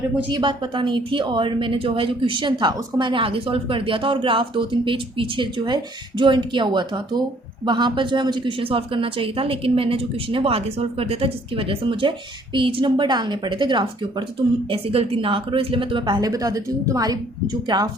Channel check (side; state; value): both; normal; correlation 0.61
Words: मुझे ये बात पता नहीं थी, और मैंने जो है जो क्वेश्चन था उसको मैंने आगे सॉल्व कर दिया था, और ग्राफ 2-3 पेज पीछे जो है जॉइंट किया हुआ था, तो वहाँ पर जो है मुझे क्वेश्चन सॉल्व करना चाहिए था, लेकिन मैंने जो क्वेश्चन है वो आगे सॉल्व कर दिया था, जिसकी वजह से मुझे पेज नंबर डालने पड़े थे ग्राफ के ऊपर। तो तुम ऐसी गलती ना करो, इसलिए मैं तुम्हें पहले बता देती हूँ। तुम्हारी जो ग्राफ